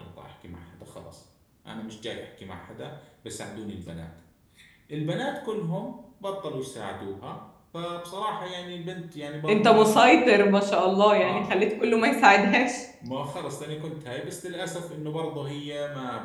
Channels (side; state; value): both; identical; correlation 1.00